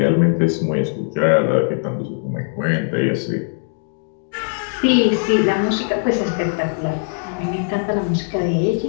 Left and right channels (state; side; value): silent; right; digital silence